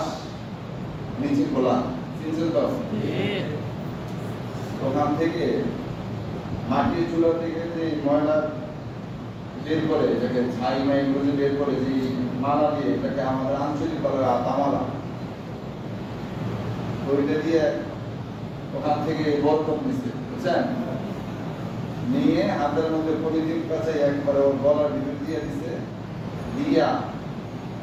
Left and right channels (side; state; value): both; identical; correlation 1.00